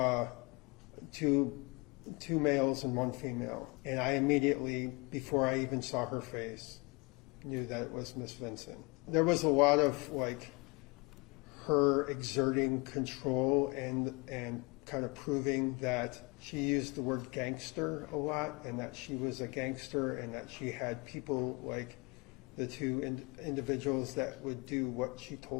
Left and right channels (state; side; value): quieter; right; 27.9 dB